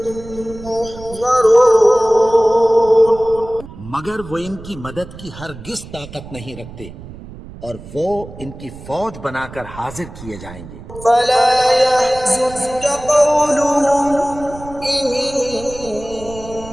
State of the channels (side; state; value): right; noise; rumble, 15 dB below the sound